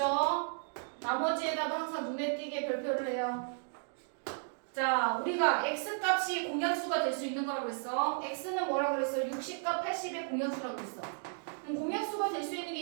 나머지에다가 항상 눈에 띄게 별표를 해요. 자, 우리가 x값이 공약수가 될 수 있는 거라고 했어. x는 뭐라고 그랬어? 60과 80의 공약수라고 했어. 그럼 공약수가 될 수 있는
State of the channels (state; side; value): silent; left; 55 dB below the other